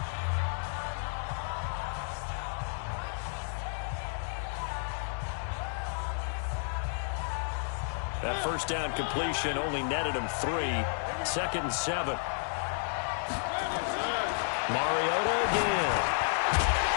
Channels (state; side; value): silent; right; digital silence